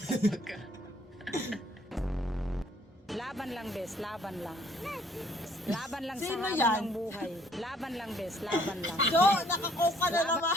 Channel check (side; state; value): both; normal; correlation 0.63